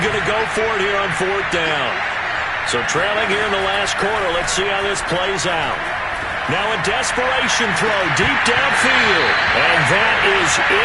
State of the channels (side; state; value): both; identical; correlation 1.00